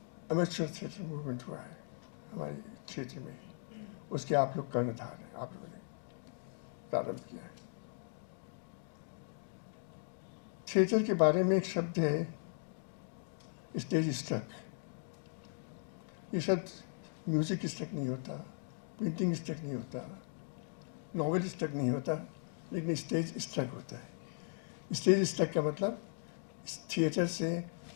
अमेचर थिएटर मूवमेंट हुआ है हमारे क्षेत्र में, उसके आप लोग कर्णधार हैं, आप लोगों ने प्रारंभ किया है। थिएटर के बारे में एक शब्द है स्टेज स्ट्रक। ये शब्द म्यूजिक स्ट्रक नहीं होता, पेंटिंग स्ट्रक नहीं होता, नॉवेल स्ट्रक नहीं होता, लेकिन स्टेज स्ट्रक होता है। स्टेज स्ट्रक का मतलब थिएटर से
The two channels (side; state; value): right; silent; digital silence